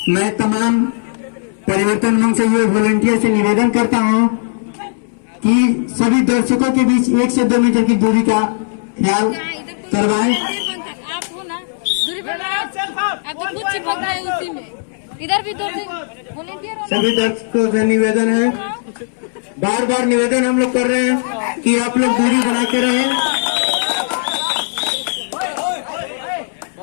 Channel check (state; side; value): silent; right; 68 dB below the other